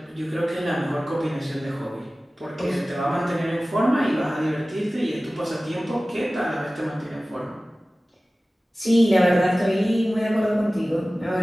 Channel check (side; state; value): both; normal; correlation 0.97